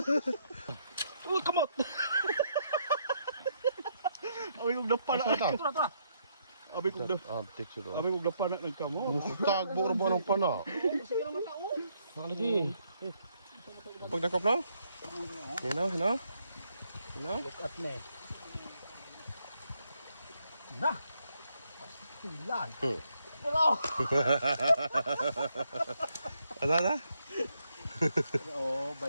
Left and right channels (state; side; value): inverted; both; correlation -0.75